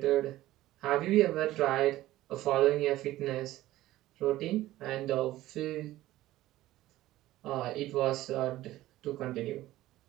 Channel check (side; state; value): left; quieter; 15.8 dB